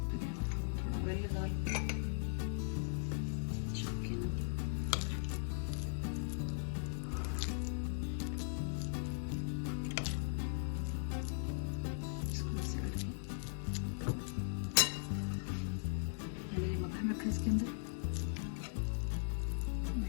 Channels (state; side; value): silent; right; digital silence